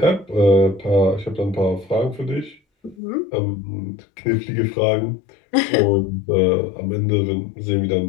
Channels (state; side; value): drops out; right; at 3.0 s